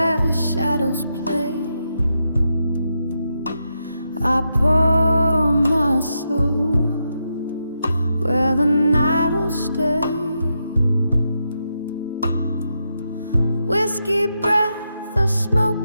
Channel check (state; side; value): inverted; both; correlation -0.84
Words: shadows play, I pour my soul where the night will stay. Whiskey breath, a